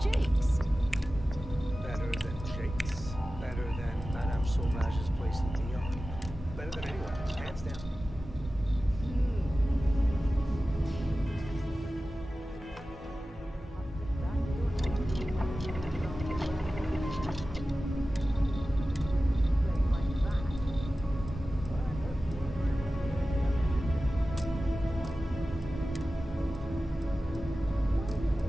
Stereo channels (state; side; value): normal; both; correlation 0.95